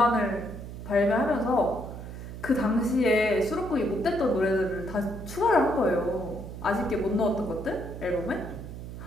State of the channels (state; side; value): noise; right; hum, 10 dB below the sound